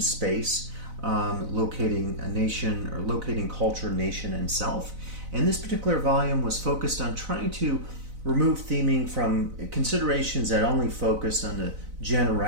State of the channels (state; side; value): late; left; 4.0 ms